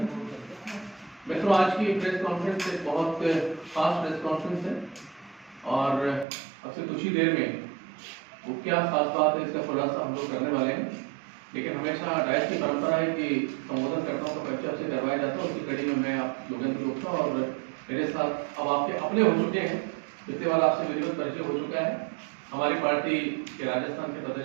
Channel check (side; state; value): left; drops out; at 6.2 s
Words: मित्रों, आज की प्रेस कॉन्फ्रेंस एक बहुत खास प्रेस कॉन्फ्रेंस है और अब से कुछ ही देर में वो क्या खास बात है इसका खुलासा हम लोग करने वाले हैं। लेकिन हमेशा डायस की परंपरा है कि संबोधनकर्ताओं का परिचय आपसे करवाया जाता है। उसी कड़ी में मैं आप योगेंद्र गुप्ता और मेरे साथ अब आपके अपने हो चुके हैं, इसके बाद आपसे विधिवत परिचय हो चुका है हमारी पार्टी के राजस्थान के